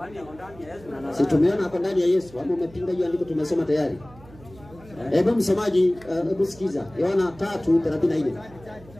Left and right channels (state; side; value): noise; right; hum, 21 dB below the sound